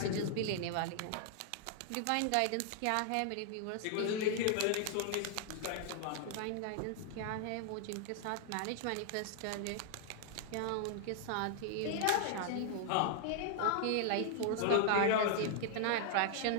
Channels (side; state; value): both; different; correlation -0.01